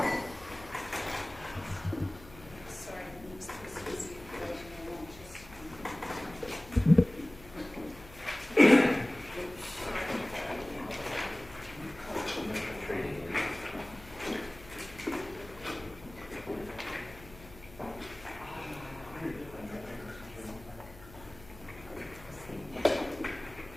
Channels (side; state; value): left; noise; hum, 19 dB below the sound